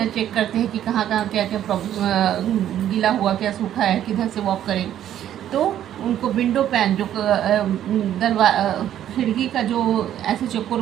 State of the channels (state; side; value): quieter; left; 11.1 dB